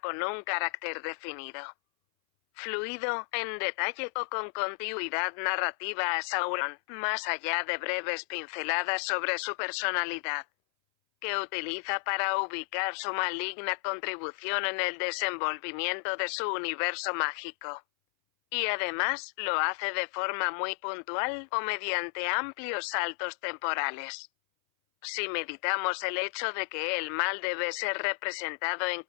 un carácter definido, fluido, en detalle o con continuidad narrativa a Sauron, más allá de breves pinceladas sobre su personalidad, que utiliza para ubicar su maligna contribución en el desenvolvimiento de su universo mágico. Y además, lo hace de forma muy puntual, o mediante amplios saltos temporales. Si meditamos el hecho de que el mal debe ser representado en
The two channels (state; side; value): silent; right; 56 dB below the other